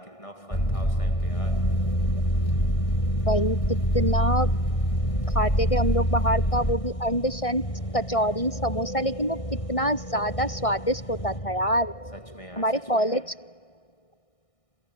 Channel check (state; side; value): late; right; 1.6 ms